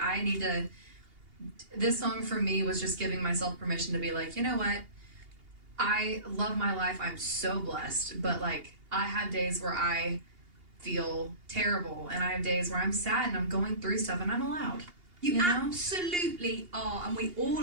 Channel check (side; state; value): left; late; 2.8 ms